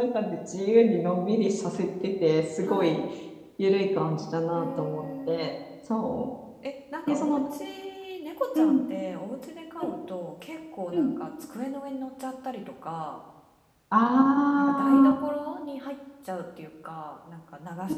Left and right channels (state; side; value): identical; both; correlation 1.00